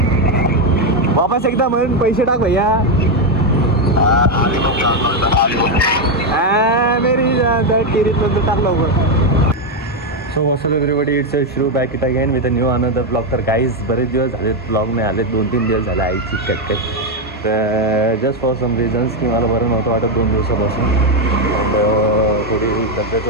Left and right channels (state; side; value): normal; both; correlation 0.05